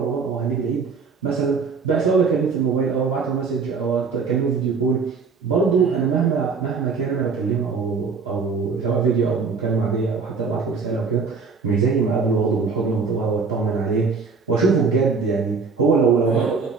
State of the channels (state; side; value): quieter; left; 5.0 dB